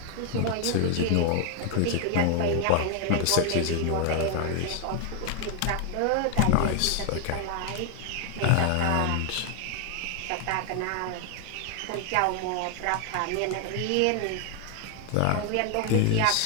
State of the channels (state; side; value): different; both; correlation 0.00